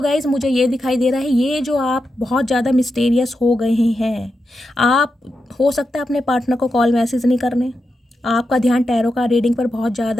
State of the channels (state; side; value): normal; both; correlation 0.88